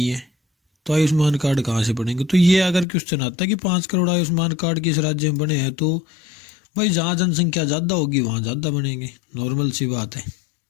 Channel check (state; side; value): drops out; right; at 2.9 s